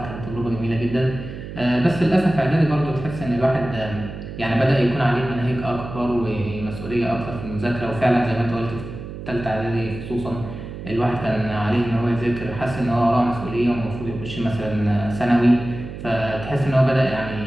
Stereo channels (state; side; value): noise; right; hum, 10 dB below the sound